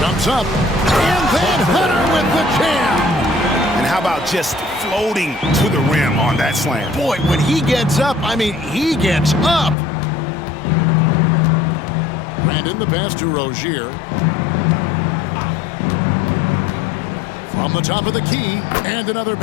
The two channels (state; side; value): drops out; right; at 9.8 s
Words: up. And then Hunter with the jam. And how about just floating to the rim on that slam? Boy, when he gets up, I mean, he gets up. Brandon the pass to Rozier. From the top of the key, and another